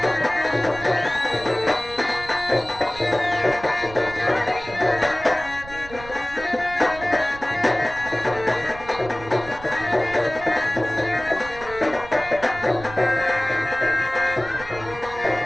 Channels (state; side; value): noise; right; rumble, 16 dB below the sound